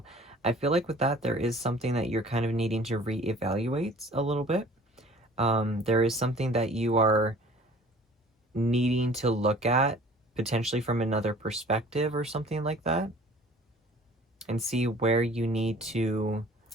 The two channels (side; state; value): both; normal; correlation 0.49